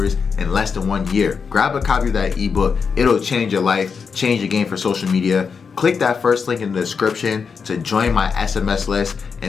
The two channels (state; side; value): quieter; right; 5.7 dB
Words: in less than 1 year. Grab a copy of that ebook. It'll change your life, change your game for social media. Click that first link in the description to join my SMS list,